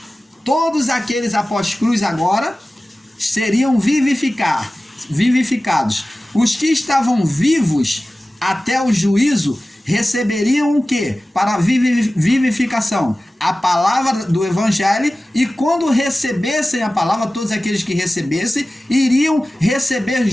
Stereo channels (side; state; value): both; normal; correlation 0.96